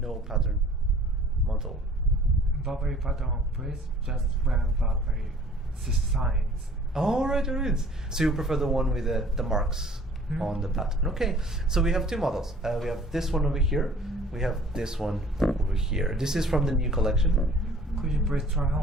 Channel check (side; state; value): both; normal; correlation 0.52